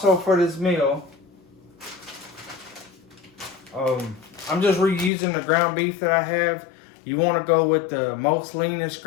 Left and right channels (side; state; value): right; drops out; at 5.1 s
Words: for this meal, I'm just reusing the ground beef that I have. You want to go with the most leanest